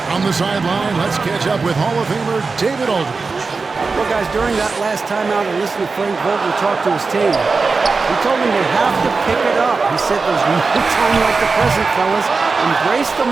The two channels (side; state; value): left; quieter; 4.3 dB